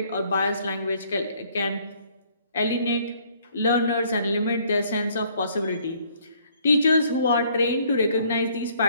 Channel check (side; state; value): both; inverted; correlation -0.63